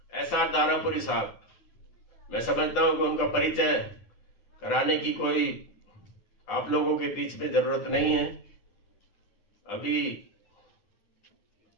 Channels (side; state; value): right; late; 10 ms